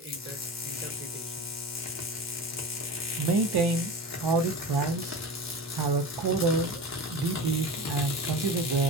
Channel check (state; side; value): normal; both; correlation 0.30